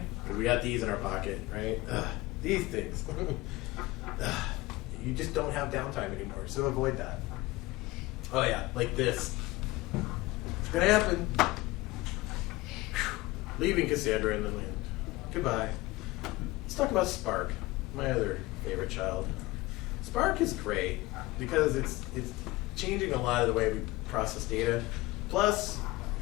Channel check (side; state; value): right; quieter; 20.2 dB